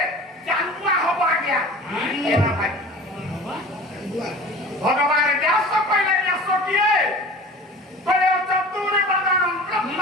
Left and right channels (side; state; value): both; normal; correlation 0.40